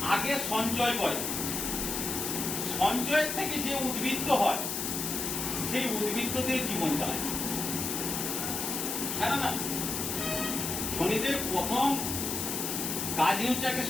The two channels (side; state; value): left; noise; hiss, 2 dB below the sound